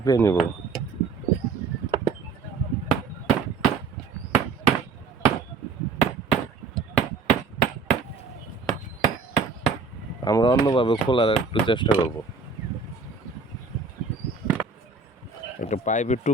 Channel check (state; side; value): quieter; left; 4.6 dB